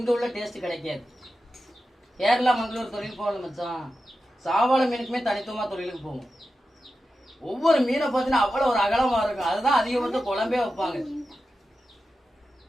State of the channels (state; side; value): normal; both; correlation 0.92